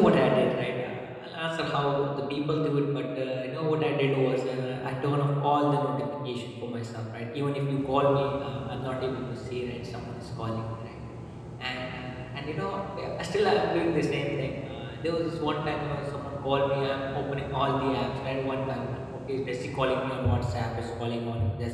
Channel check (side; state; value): both; identical; correlation 1.00